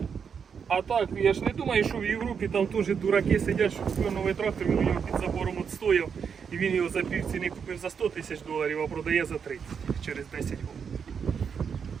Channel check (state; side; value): quieter; left; 6.7 dB